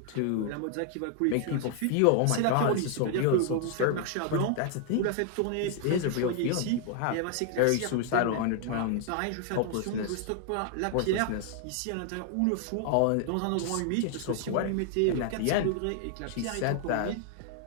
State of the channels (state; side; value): different; both; correlation 0.00